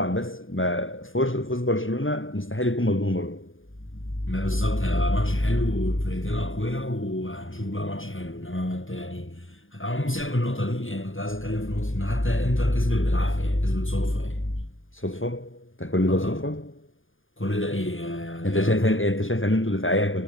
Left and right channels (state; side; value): late; right; 0.58 ms